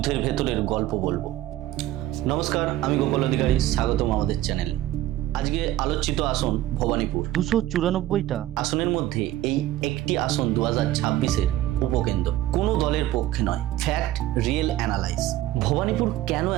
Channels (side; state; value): left; quieter; 14.3 dB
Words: ভেতরের গল্প বলবো। নমস্কার, আমি গোপাল অধিকারী, স্বাগতম আমাদের চ্যানেলে। আজকে আলোচিত আসন ভবানীপুর। 294টা আসনের মধ্যে এই একটি আসন 2026-এর উপকেন্দ্র। কোনো দলের পক্ষে নয়, ফ্যাক্ট, রিয়েল অ্যানালাইজ। ভবানীপুর কেন